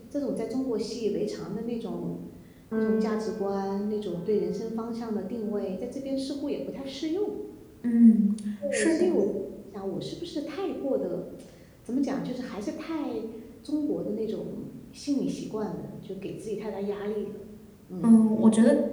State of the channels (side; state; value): both; identical; correlation 1.00